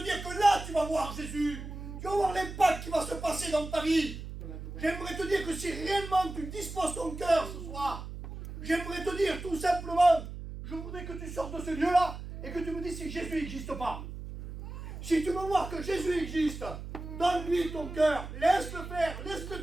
dire que là, tu vas voir Jésus. Tu vas voir l'impact qui va se passer dans ta vie. J'aimerais te dire que si réellement tu disposes ton cœur ce soir, j'aimerais te dire tout simplement, je voudrais que tu sortes de ce lieu-là et que tu me dises si Jésus n'existe pas. Si tu veux voir que Jésus existe, donne-lui ton cœur, laisse-le faire, laisse-le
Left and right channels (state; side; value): noise; right; hum, 10 dB below the sound